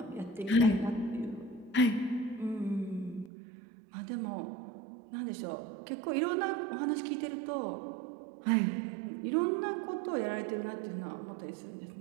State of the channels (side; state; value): left; drops out; at 3.3 s